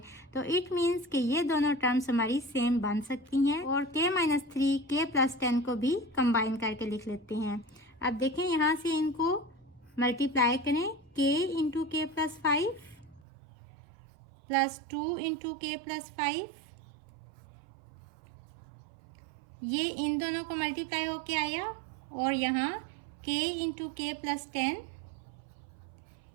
तो इट मीन्स कि ये दोनों टर्म्स हमारी सेम बन सकती हैं और k-3 k प्लस 10 को भी कंबाइन करके लिख लेते हैं। अब देखें यहाँ से इनको मल्टीप्लाई करें, k into k plus 5 plus 2 into k plus 5, ये इन दोनों को मल्टीप्लाई होके आया और यहाँ k into k plus 10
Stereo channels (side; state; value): left; drops out; at 13.2 s